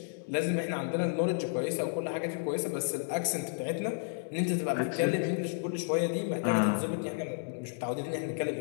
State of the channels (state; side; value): silent; right; digital silence